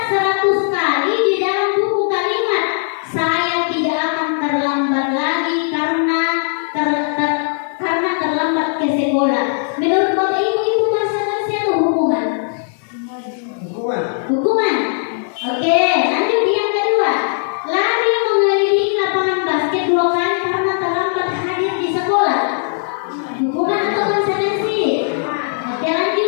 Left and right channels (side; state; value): right; silent; digital silence